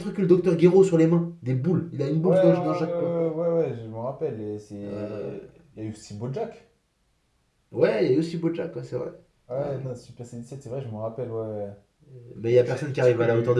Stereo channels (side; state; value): both; identical; correlation 1.00